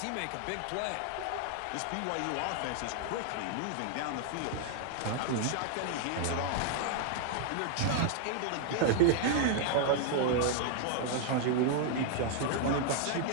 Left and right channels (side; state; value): both; different; correlation 0.00